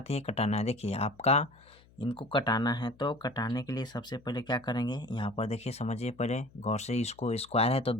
हैं कटाना है। देखिए आपका इनको कटाना है, तो कटाने के लिए सबसे पहले क्या करेंगे, यहाँ पर देखिए समझिए पहले गौर से, इसको स्क्वायर है तो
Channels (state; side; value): noise; left; hum, 27 dB below the sound